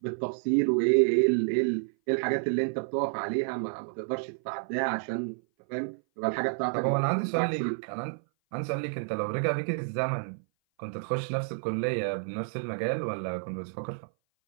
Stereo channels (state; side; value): silent; left; 57 dB below the other